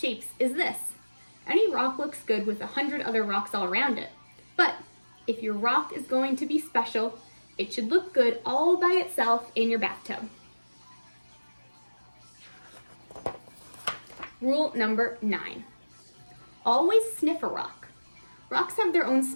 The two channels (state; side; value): inverted; both; correlation -1.00